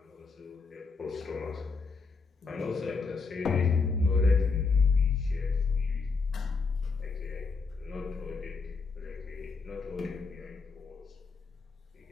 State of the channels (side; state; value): right; quieter; 4.5 dB